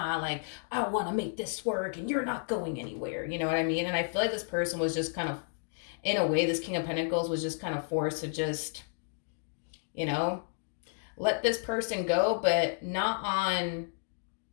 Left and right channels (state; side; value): silent; right; digital silence